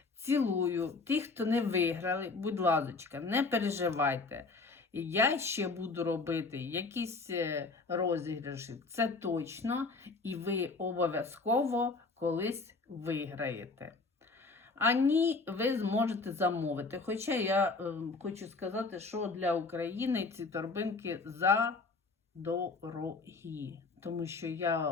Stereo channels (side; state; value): right; quieter; 3.9 dB